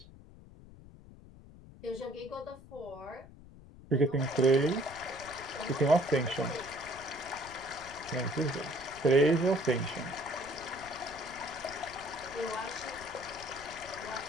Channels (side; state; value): left; noise; rumble, 19 dB below the sound